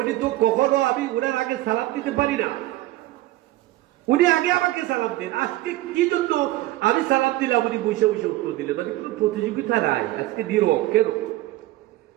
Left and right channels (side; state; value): left; quieter; 17.0 dB